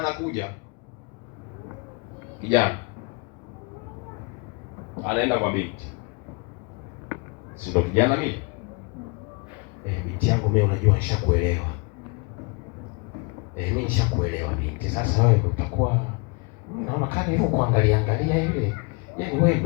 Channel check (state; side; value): quieter; right; 29.6 dB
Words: kijana anaenda kwa binti, si ndo kijana mimi? Binti yangu mimi, unajua nishakuelewa. Mimi nishakuelewa binti. Sasa wewe utakuwa, naona kama hivyo kuangalia angalia ile, yaani wewe